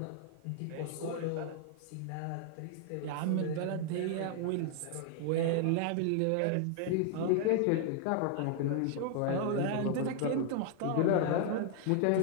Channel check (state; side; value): different; both; correlation 0.00